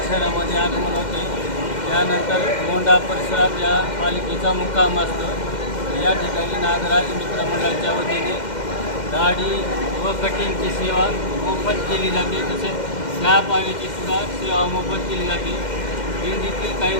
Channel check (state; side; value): late; right; 2.1 ms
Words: शहरामध्ये आगमन होते, त्यानंतर मोंढा परिसरात या पालखीचा मुक्काम असतो। या ठिकाणी नागराज मित्र मंडळाच्या वतीने दाढी व कटिंगची सेवा मोफत केली जाते, तसेच चहा पाण्याची सुद्धा सेवा मोफत केली जाते। दिंडीतील काही